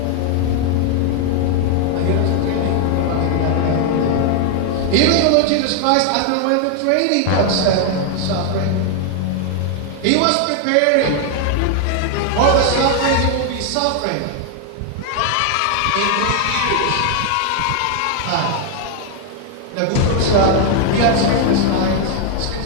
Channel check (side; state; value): both; different; correlation 0.00